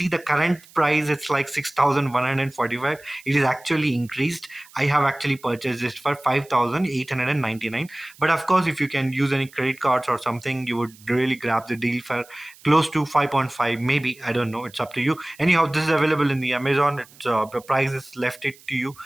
the current price. It's like 6,145. It is actually increased. I have actually purchased this for 5,899. But of course, if you can use any credit cards or something, you would really grab the deal for close to 5.5, maybe. I don't know. It's up to you. Anyhow, this is available in the Amazon. The price is left it to you.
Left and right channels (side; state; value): right; noise; hiss, 24 dB below the sound